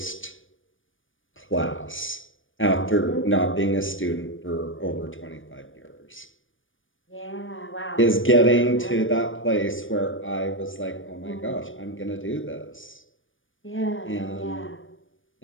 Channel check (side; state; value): right; late; 0.57 ms